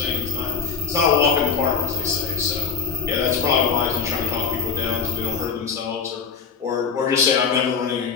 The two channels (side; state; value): right; quieter; 5.9 dB